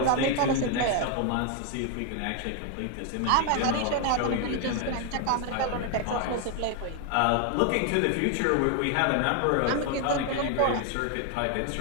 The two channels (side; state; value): both; different; correlation 0.01